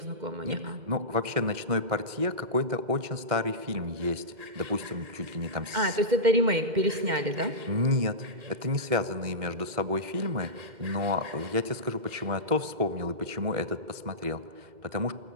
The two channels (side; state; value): left; late; 2.1 ms